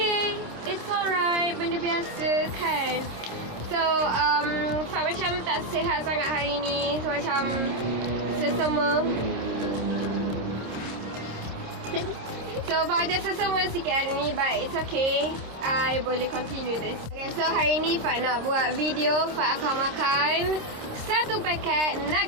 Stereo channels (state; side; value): late; left; 26 ms